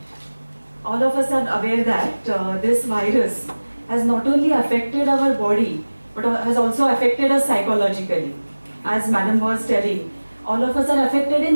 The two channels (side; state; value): both; inverted; correlation -1.00